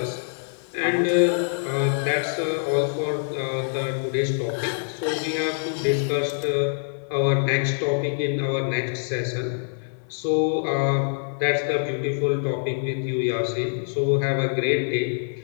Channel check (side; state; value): right; silent; 62 dB below the other